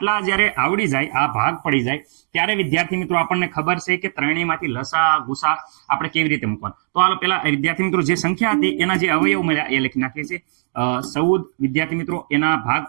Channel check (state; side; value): silent; left; digital silence